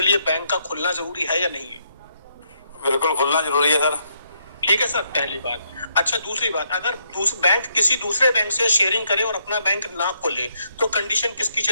लिए बैंक का खुलना जरूरी है या नहीं है? बिल्कुल खुलना जरूरी है सर। ठीक है सर, पहली बात। अच्छा, दूसरी बात, अगर बैंक किसी दूसरे बैंक से शेयरिंग करे और अपना बैंक ना खोले तो कंडीशन किसकी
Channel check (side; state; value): both; inverted; correlation -0.75